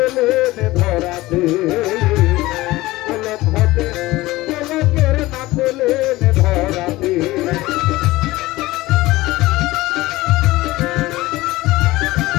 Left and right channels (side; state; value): right; quieter; 18.7 dB